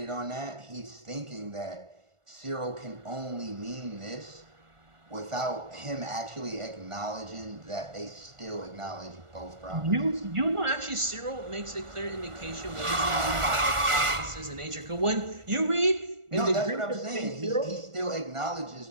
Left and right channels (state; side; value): late; left; 1.4 ms